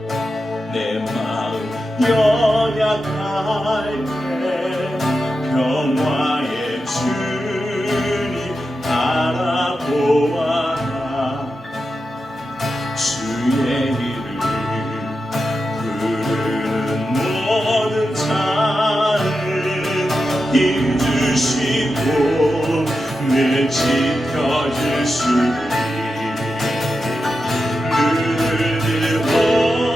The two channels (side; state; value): both; normal; correlation 0.89